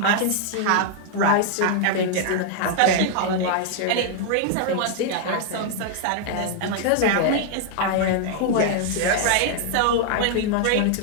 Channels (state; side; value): different; both; correlation 0.00